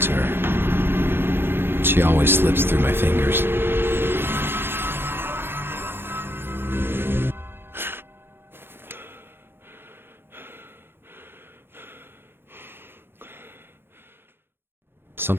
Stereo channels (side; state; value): left; late; 0.11 ms